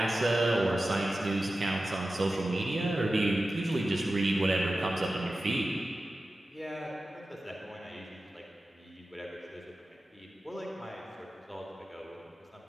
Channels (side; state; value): both; normal; correlation 0.94